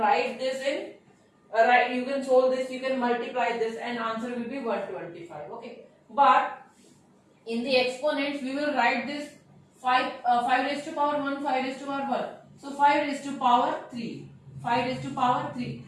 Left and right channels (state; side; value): identical; both; correlation 1.00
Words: this in you can solve this, you can multiply this, and answer will be 125. Okay, but in the exponents we will write this 5 raised to power 1, 5 raised to power 1. So 5 raised to power 3, 5 raised to power 3